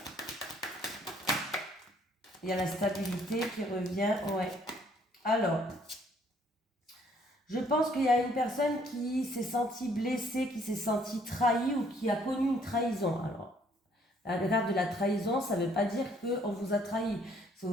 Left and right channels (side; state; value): both; normal; correlation 0.64